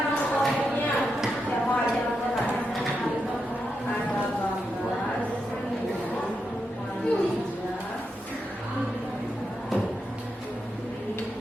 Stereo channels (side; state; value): both; normal; correlation 0.85